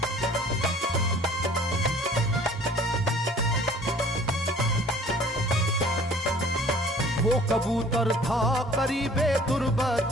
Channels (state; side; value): normal; both; correlation 0.51